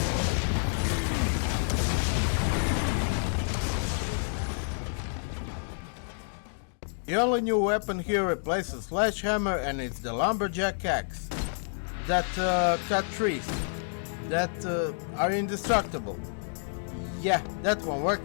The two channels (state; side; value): silent; right; digital silence